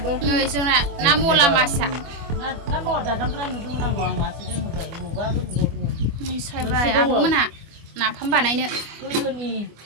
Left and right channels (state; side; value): late; left; 25 ms